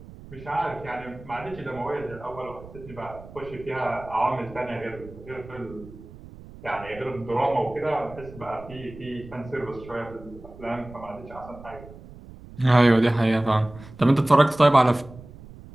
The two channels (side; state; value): right; noise; rumble, 17 dB below the sound